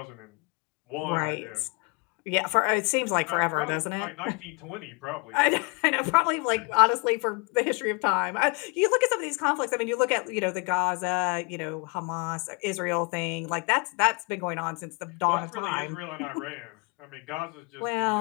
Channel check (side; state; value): right; quieter; 32.5 dB